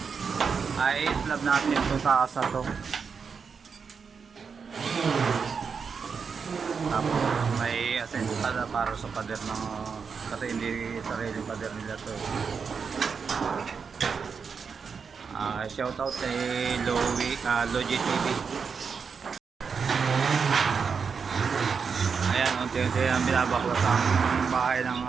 Ay slab natin ito sa asa to. Tapos may asensada para sa pader ng kasi hindi sarili pader nila to. Shout out kay Logi TV. Ayan, unti-unti ang binabaklas ang bahay ng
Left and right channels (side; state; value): left; quieter; 5.8 dB